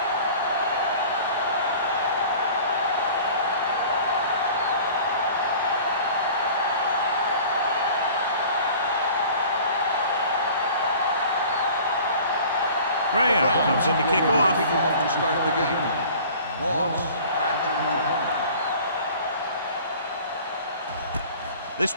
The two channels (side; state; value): both; inverted; correlation -0.45